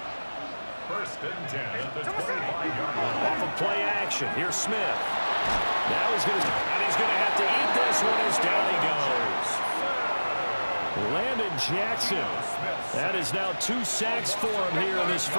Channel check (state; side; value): inverted; both; correlation -1.00